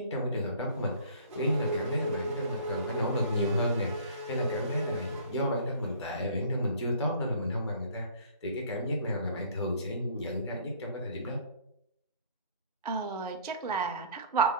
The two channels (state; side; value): inverted; both; correlation -0.51